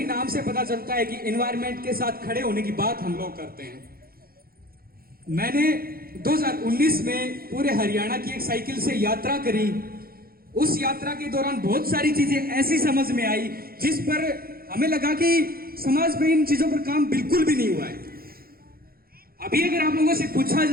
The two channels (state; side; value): late; left; 0.43 ms